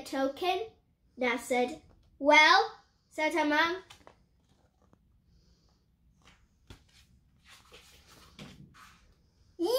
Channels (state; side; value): identical; both; correlation 1.00